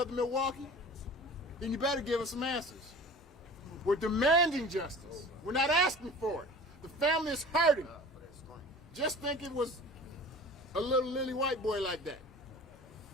Milwaukee? Then you better give us some answers. We're demanding justice. We're not asking for it. The family is hurting. Just think it was a little lily white boy like that.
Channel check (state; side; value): normal; both; correlation 0.41